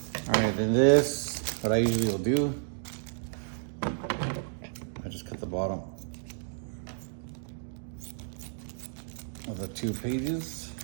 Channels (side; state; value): left; silent; digital silence